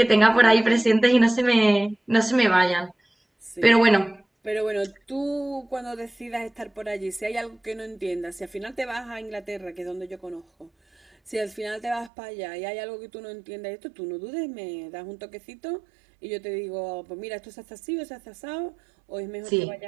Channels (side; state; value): left; drops out; at 12.1 s